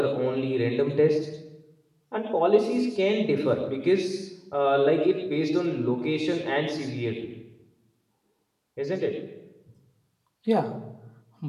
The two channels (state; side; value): identical; both; correlation 1.00